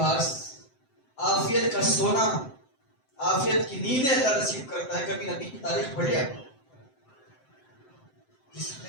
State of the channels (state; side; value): late; right; 7.7 ms